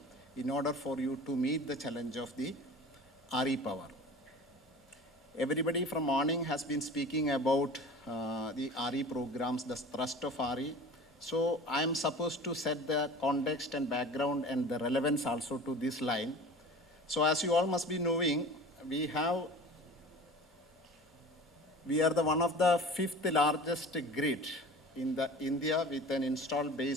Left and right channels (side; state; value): both; normal; correlation 0.39